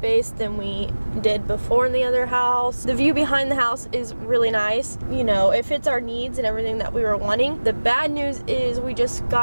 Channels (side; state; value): both; inverted; correlation -1.00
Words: than we did before in the other house. The view behind the house is really nice. It fits our needs and everything that we were wanting. The bad news is we just